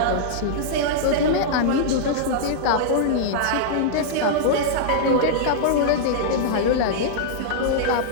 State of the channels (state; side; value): different; both; correlation -0.02